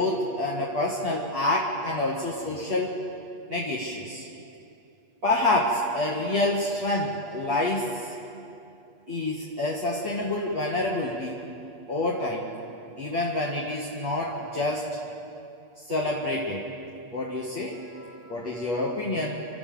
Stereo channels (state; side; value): late; left; 8.4 ms